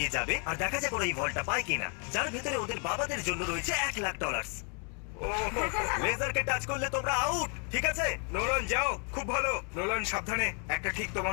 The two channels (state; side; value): quieter; right; 39.6 dB